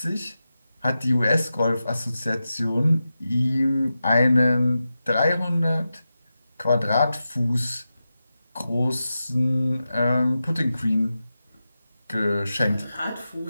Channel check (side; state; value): both; inverted; correlation -0.91